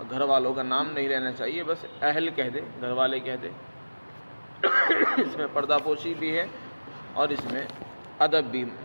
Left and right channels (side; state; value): both; inverted; correlation -1.00